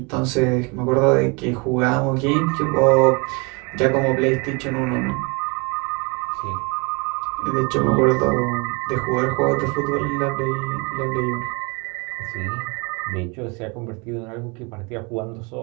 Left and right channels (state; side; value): quieter; left; 30.1 dB